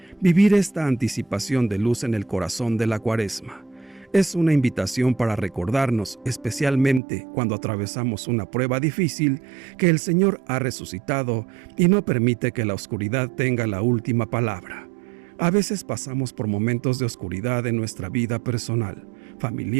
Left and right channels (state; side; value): drops out; left; at 7.0 s